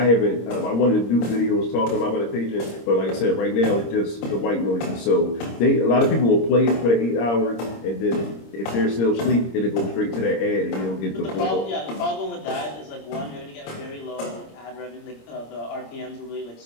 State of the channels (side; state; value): right; late; 26 ms